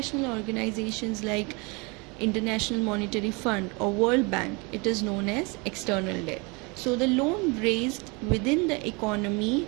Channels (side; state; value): left; quieter; 29.0 dB